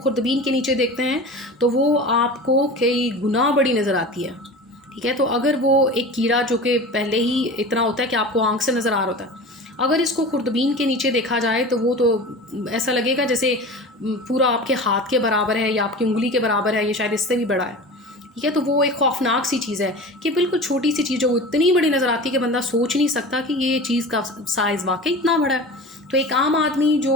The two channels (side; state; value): both; normal; correlation 0.34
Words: के नीचे देखते हैं तो वो आपको कई गुना बड़ी नज़र आती है। ठीक है, तो अगर वो एक कीड़ा जो कि पहले ही इतना होता है कि आपको आंख से नज़र आ रहा होता है, अगर इसको खुर्दबीन के नीचे देखा जाए तो वो तो ऐसा लगेगा जैसे पूरा आपके हाथ के बराबर है या आपकी उंगली के बराबर है, ये शायद इससे भी बड़ा है। ठीक है, तो वो एक खौफनाक सी चीज़ है कि बिल्कुल छोटी सी चीज़ जो इतनी बड़ी नज़र आती है कि बंदा सोच नहीं सकता कि ये चीज़ का साइज़ वाकई इतना बड़ा है। तो एक आम आदमी